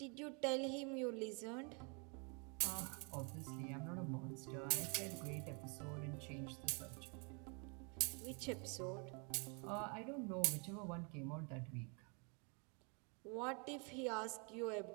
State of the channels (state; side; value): quieter; left; 35.2 dB